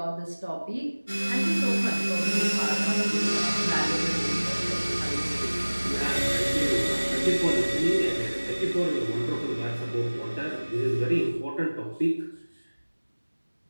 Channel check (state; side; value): inverted; both; correlation -1.00